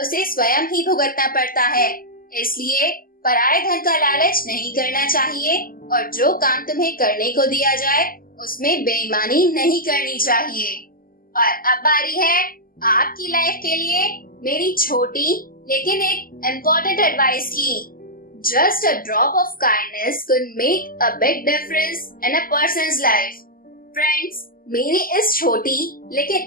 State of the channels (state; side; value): late; right; 0.42 ms